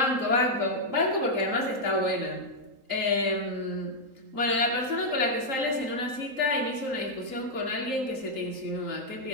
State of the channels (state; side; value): late; left; 3.8 ms